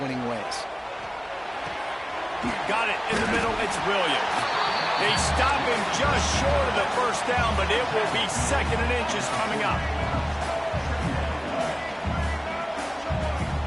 winning ways. Got it in the middle. It's Williams. They stop him just short of the first down, but it will be 2nd and inches coming up.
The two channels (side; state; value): both; identical; correlation 1.00